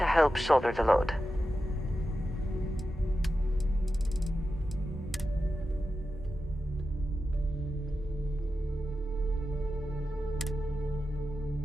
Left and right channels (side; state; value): both; normal; correlation 0.91